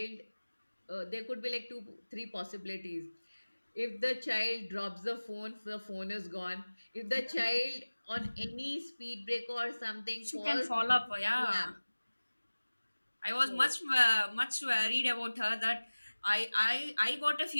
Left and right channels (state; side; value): inverted; both; correlation -1.00